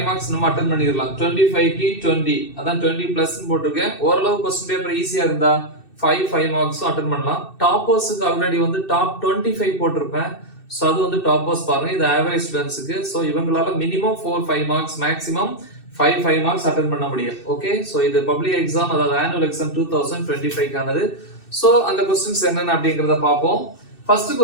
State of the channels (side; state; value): right; late; 2.6 ms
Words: மார்க்ஸ் நம்ம அட்டெண்ட் பண்ணிரலாம். 25 க்கு 20 அதான் 20 பிளஸ் போட்டுருக்கேன். ஓரளவு क्वेश्चन பேப்பர் ஈஸியா இருந்தா 5 மார்க்ஸும் அட்டெண்ட் பண்ணலாம். டாப்பர்ஸ்க்கு ஆல்ரெடி வந்து டாப் 25 போட்டிருப்பேன். ஸோ அது வந்து டாப்பர்ஸ் பாருங்க, இது ஆவரேஜ் ஸ்டூடெண்ட்ஸுக்கு. ஸோ இவங்களால minimum 4 5 marks maximum 5 marks attend பண்ண முடியும். ஓகே, ஸோ இது பப்ளிக் எக்ஸாம், அதாவது ஆனுவல் எக்ஸாம் 2025க்கானது. ஸோ அந்த கொஸ்டின்ஸ் என்னென்ன அப்படிங்கிறத பார்ப்போம். First